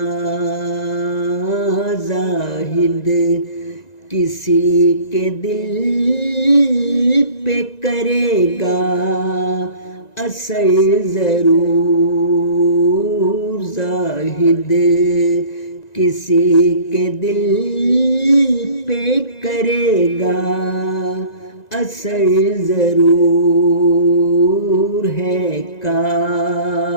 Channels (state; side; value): late; right; 1.9 ms